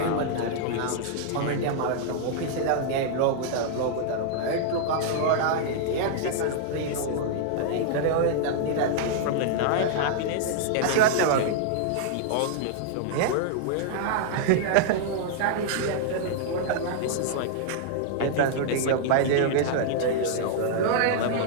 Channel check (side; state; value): both; different; correlation -0.01